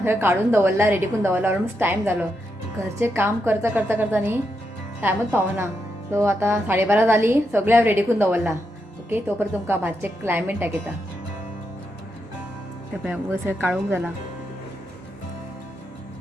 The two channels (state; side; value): normal; both; correlation 0.83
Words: काडून दवरला, रेडी करून दवरला. ऑलमोस्ट टायम जालो. घरचें काम करता करता करता न्ही टायमूच पावना. सो आतां 12:30 जाली, सगळें हांवें रेडी करून दवरला. ओके, तो पर्यंत तुमकां भाजचें क्लायमेट दाखयता. ते पळय वयर सगळें काळोख जाला.